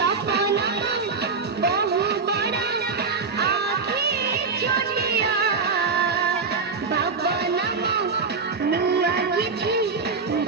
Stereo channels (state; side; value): quieter; left; 4.8 dB